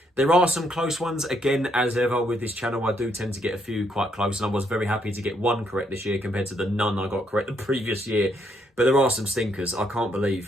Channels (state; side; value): normal; both; correlation 0.73